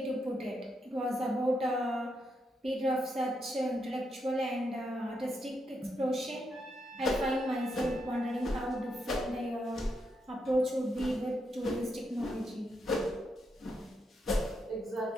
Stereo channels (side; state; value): both; normal; correlation 0.81